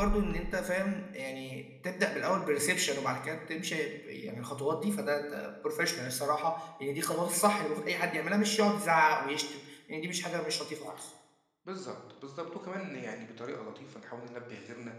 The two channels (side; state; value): both; identical; correlation 1.00